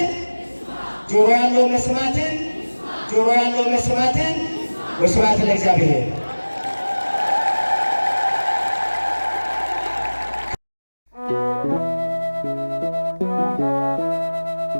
ጆሮ ያለው መስማትን ጆሮ ያለው መስማትን። ወስብሐት ለእግዚአብሔር።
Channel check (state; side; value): inverted; both; correlation -1.00